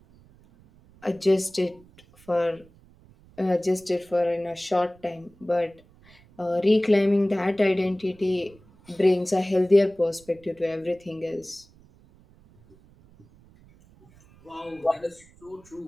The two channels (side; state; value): right; noise; rumble, 27 dB below the sound